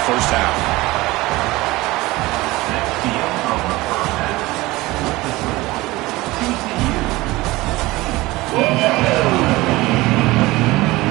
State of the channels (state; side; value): quieter; left; 20.0 dB